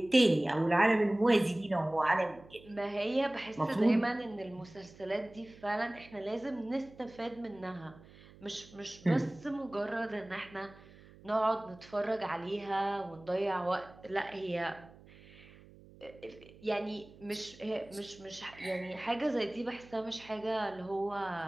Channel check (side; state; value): right; noise; hum, 22 dB below the sound